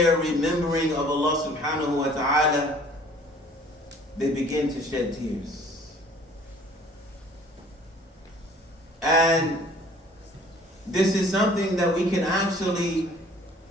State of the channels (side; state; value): both; normal; correlation 0.53